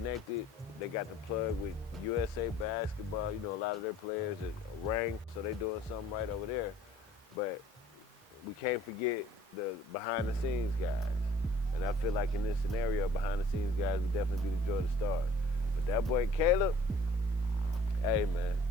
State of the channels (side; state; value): both; normal; correlation 0.55